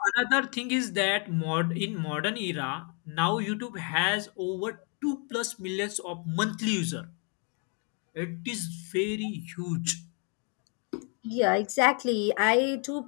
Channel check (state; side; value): quieter; right; 38.5 dB